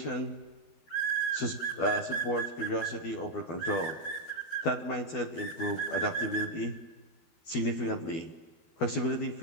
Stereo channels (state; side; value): late; right; 12 ms